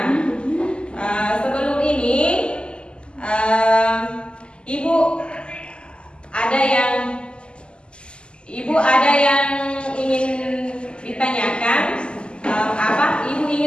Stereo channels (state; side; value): late; right; 0.051 ms